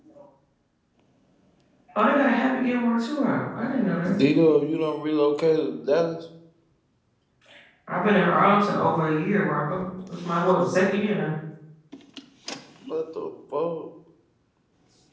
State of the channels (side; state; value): both; identical; correlation 1.00